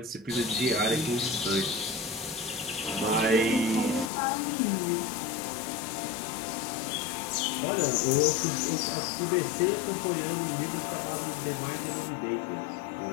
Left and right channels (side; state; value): right; drops out; at 4.1 s